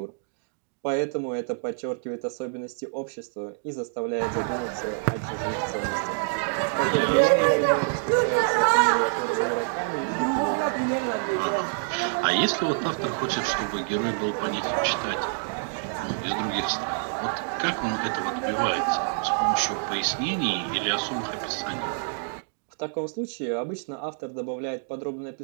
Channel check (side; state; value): left; silent; digital silence